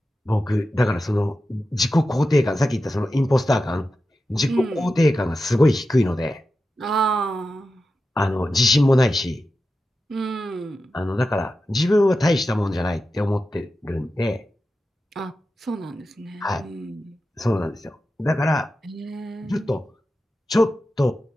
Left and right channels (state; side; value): normal; both; correlation 0.91